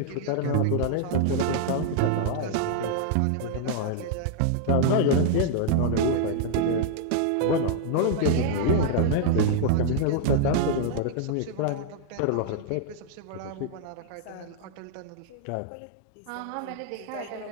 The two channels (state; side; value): different; both; correlation -0.01